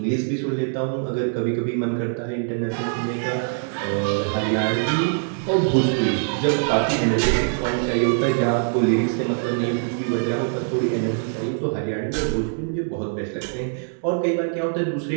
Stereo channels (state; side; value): silent; left; digital silence